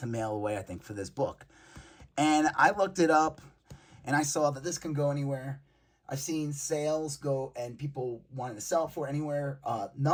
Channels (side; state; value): both; identical; correlation 1.00